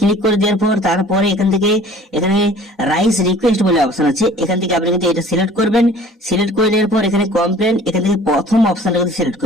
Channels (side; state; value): both; normal; correlation 0.49